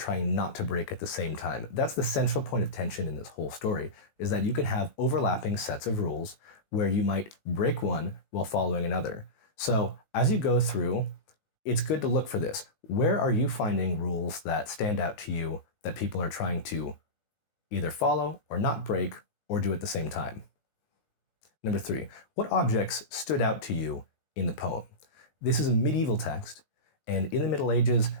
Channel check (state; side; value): late; right; 19 ms